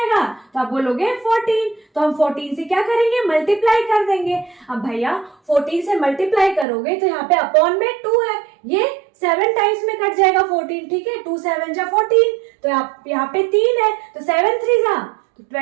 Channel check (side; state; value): left; drops out; at 6.7 s